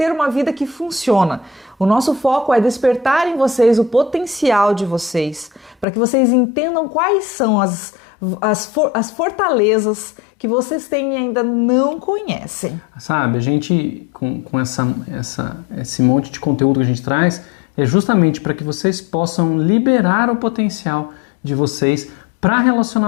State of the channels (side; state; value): right; drops out; at 5.9 s